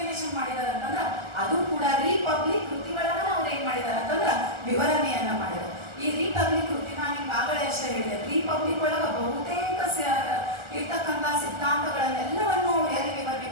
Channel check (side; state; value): left; late; 1.3 ms